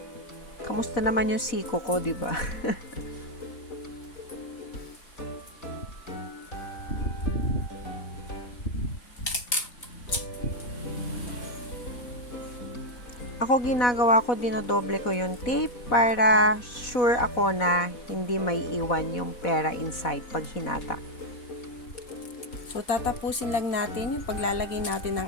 Kamusta naman yung siko ko, di ba? Ako ginagawa ko, dinodoble ko yung tape para sure ako na hindi may iwan yung pera inside pag hinata. So, tatapusin lang natin yung paglalagay natin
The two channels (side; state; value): right; late; 4.1 ms